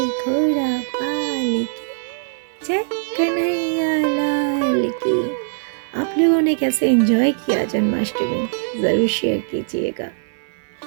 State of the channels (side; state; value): left; silent; digital silence